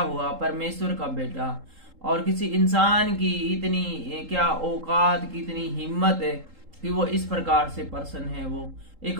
परमेश्वर का बेटा, और किसी इंसान की इतनी क्या औकात की, इतनी हिम्मत है कि वो इस प्रकार से पर्सन है, वो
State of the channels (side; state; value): left; late; 3.8 ms